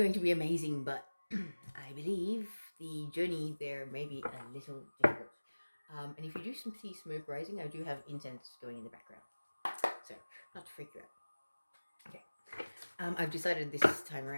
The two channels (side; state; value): both; inverted; correlation -1.00